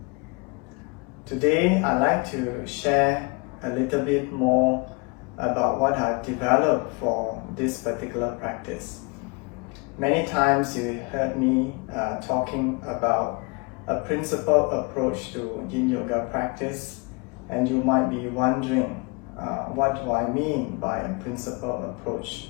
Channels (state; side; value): quieter; right; 29.6 dB